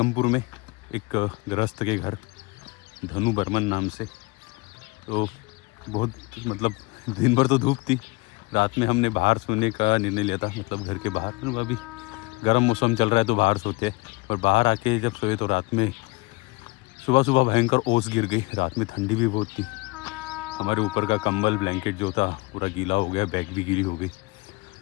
में एक गृहस्थ के घर, धनु बर्मन नाम से। तो बहुत दिन भर तो धूप थी, रात में हमने बाहर सोने का निर्णय लिया था, मतलब घर के बाहर। अभी गर्म मौसम चल रहा है तो बाहर सोते हैं, और बाहर आके जब सोए तो रात में सुबह भयंकर ओस गिर गई। रात में ठंडी भी बहुत थी, हमारे ऊपर का कंबल ब्लैंकेट जो था पूरा गीला हो गया, बैग भी गीली हो गई।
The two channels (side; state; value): right; quieter; 23.8 dB